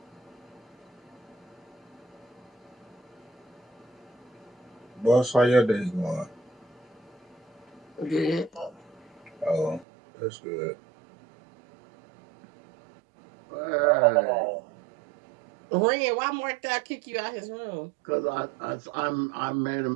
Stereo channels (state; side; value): drops out; left; at 9.9 s